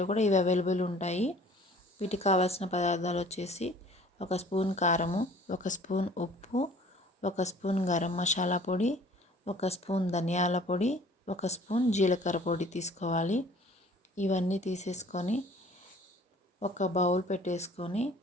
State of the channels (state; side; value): normal; both; correlation 0.51